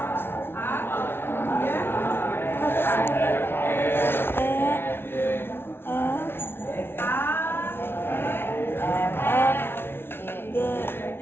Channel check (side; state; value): right; late; 0.11 ms